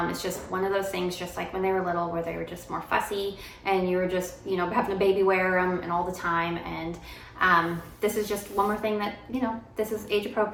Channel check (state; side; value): identical; both; correlation 1.00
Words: It's just one of those things, just like when they were little, where they were just more fussy and you were just, having a baby wear them and all the time. And this is just one more thing that, this is age